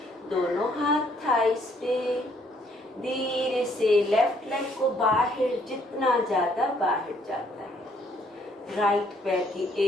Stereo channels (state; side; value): normal; both; correlation 0.66